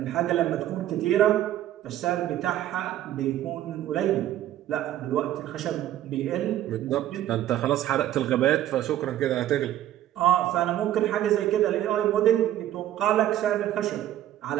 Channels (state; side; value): quieter; left; 12.7 dB